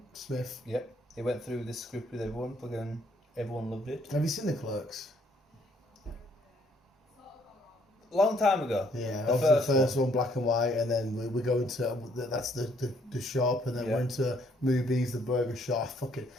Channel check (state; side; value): normal; both; correlation 0.66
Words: Smith. Yep, he went through this script with everyone. Fucking everyone loved it. Have you seen the Clerks? Long time ago. Yeah, the first one, black and white, and then we go into that's the shop, and then we're into movies, the burger shop. Fucking,